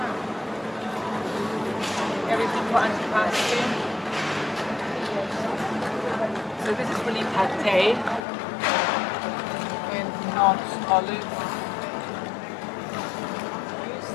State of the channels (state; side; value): drops out; right; at 8.2 s